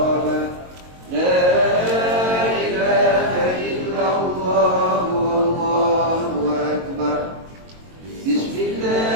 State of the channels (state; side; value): late; left; 22 ms